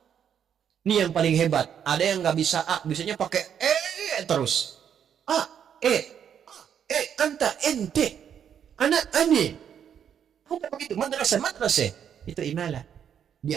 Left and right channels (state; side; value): quieter; left; 8.6 dB